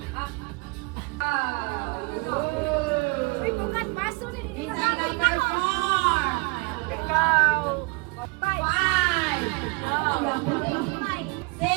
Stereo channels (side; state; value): left; quieter; 28.8 dB